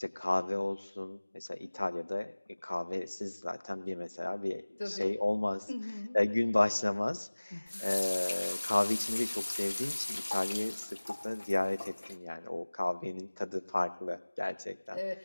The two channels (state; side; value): inverted; both; correlation -1.00